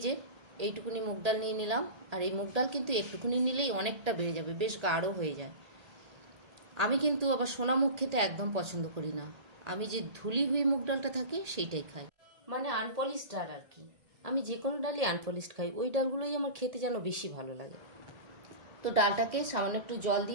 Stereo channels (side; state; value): left; late; 1.8 ms